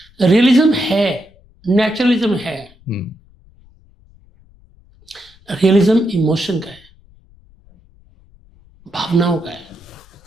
रियलिज्म है, नेचुरलिज्म है। रियलिज्म इमोशन का है, भावनाओं का है।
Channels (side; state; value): left; noise; rumble, 28 dB below the sound